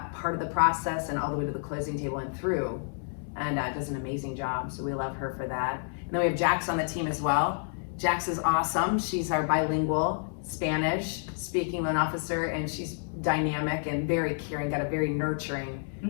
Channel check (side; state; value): right; silent; 58 dB below the other